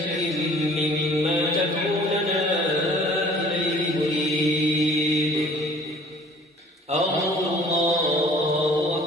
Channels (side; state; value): both; normal; correlation 0.51